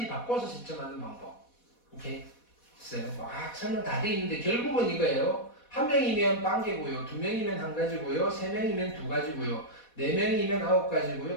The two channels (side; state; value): right; late; 4.1 ms